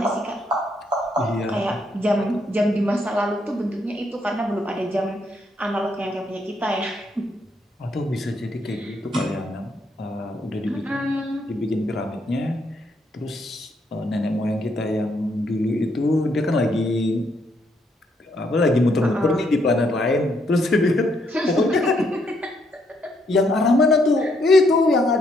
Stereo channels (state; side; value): normal; both; correlation 0.74